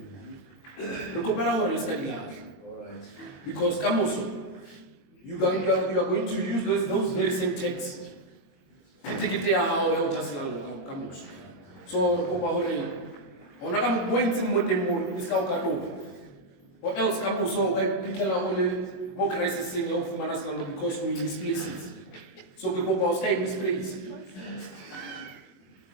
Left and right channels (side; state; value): right; late; 21 ms